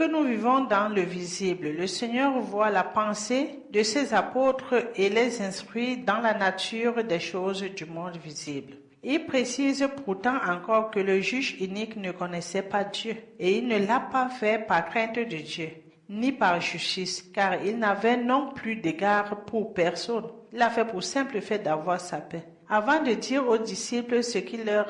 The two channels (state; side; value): identical; both; correlation 1.00